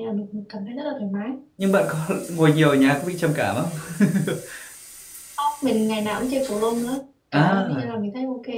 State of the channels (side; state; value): both; identical; correlation 1.00